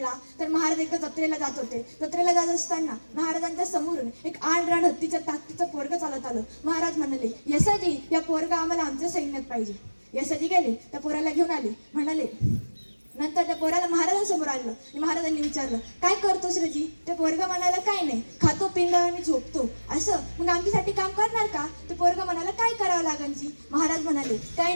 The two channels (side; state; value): both; inverted; correlation -1.00